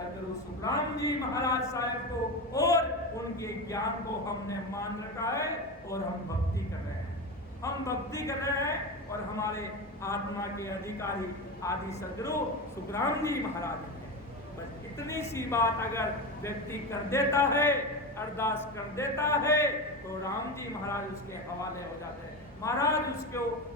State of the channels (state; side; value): normal; both; correlation 0.21